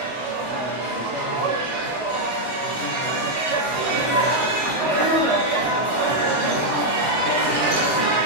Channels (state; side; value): normal; both; correlation 0.00